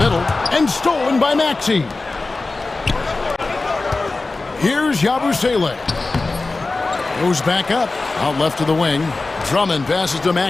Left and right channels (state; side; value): quieter; right; 3.5 dB